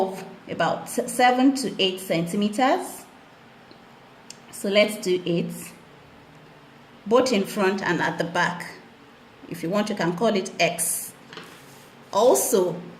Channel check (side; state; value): both; identical; correlation 1.00